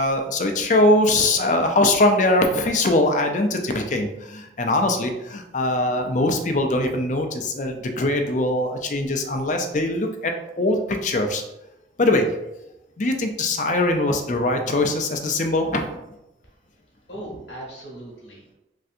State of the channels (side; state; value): both; normal; correlation 0.24